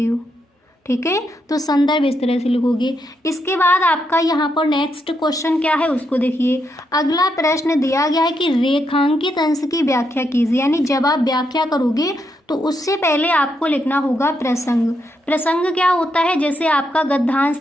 हो, ठीक है। तो संदर्भ इस तरह से लिखोगे। इसके बाद आपका यहाँ पर नेक्स्ट क्वेश्चन क्या है उसको देखिए। अगला प्रश्न दिया गया है कि रेखांकित अंश की व्याख्या कीजिए, यानी जब आप व्याख्या करोगे तो उससे पहले आपको लिखना होगा प्रसंग। प्रसंग क्या होता है, जैसे आपका गद्यांश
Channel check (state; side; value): normal; both; correlation 0.80